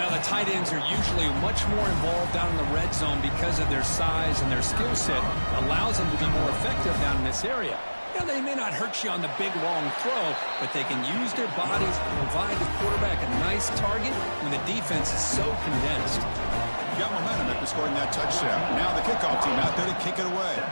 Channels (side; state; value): both; inverted; correlation -1.00